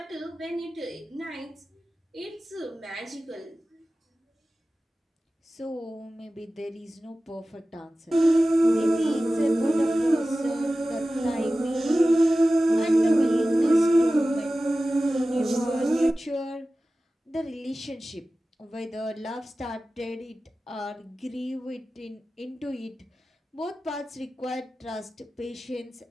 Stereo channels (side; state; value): both; normal; correlation 0.95